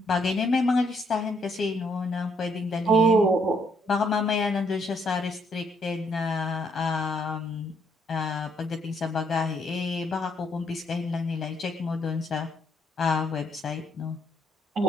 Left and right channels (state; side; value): normal; both; correlation 0.71